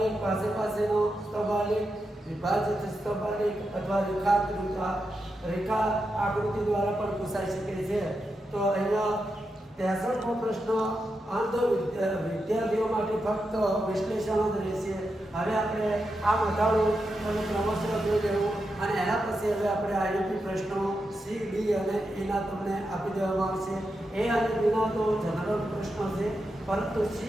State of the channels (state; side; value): normal; both; correlation 0.87